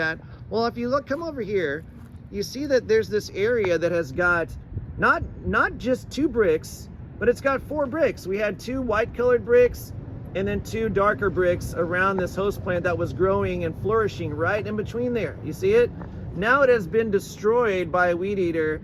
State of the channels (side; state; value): both; identical; correlation 1.00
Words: Well, if you come over here, you see that there's this area that has got not just 2 bricks, but it's got 4 bricks. We had 2 white colored bricks and then 2 darker bricks around this host plant that was growing and flourishing right in between there. You see it? Now it has been destroyed by a weed eater